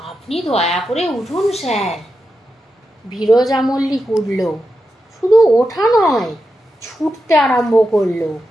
আপনি দয়া করে উঠুন স্যার। বিরজা মল্লিক উঠল। শুধু ওঠা নয়, ছুটতে আরম্ভ করলো।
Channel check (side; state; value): both; normal; correlation 0.88